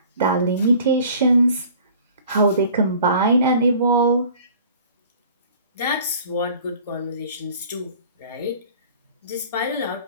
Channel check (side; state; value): both; inverted; correlation -0.49